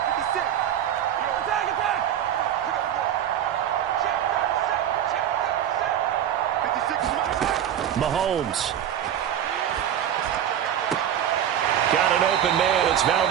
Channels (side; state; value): left; quieter; 10.1 dB